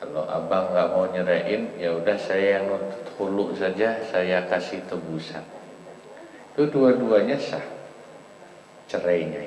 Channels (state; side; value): identical; both; correlation 1.00